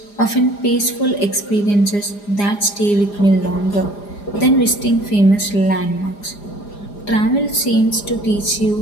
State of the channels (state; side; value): late; right; 4.9 ms